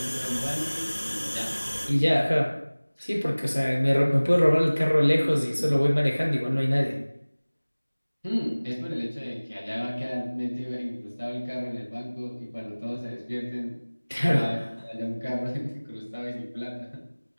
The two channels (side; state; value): both; inverted; correlation -1.00